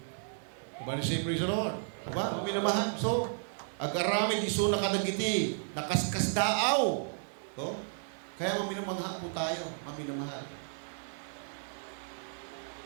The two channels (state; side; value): silent; left; digital silence